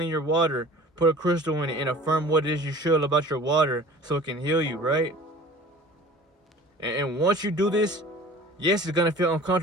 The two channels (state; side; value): normal; both; correlation 0.45